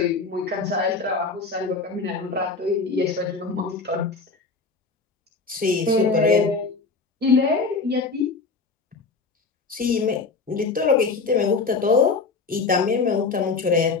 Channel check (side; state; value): right; quieter; 4.3 dB